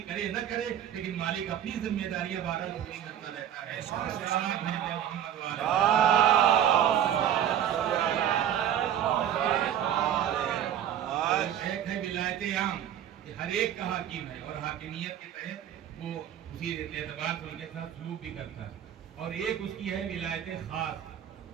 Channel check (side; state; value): left; quieter; 10.2 dB